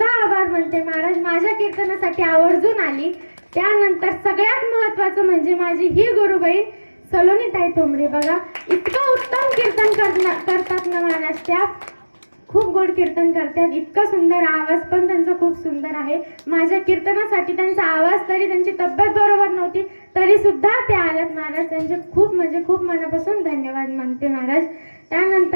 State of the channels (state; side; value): inverted; both; correlation -1.00